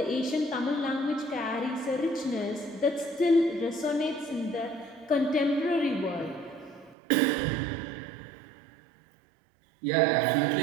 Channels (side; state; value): left; drops out; at 7.0 s